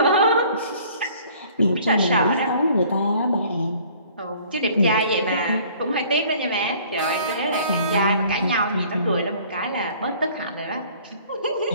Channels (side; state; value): both; inverted; correlation -0.54